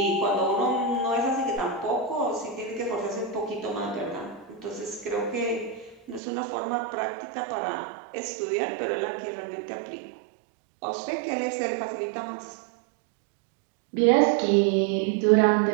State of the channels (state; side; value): drops out; left; at 6.2 s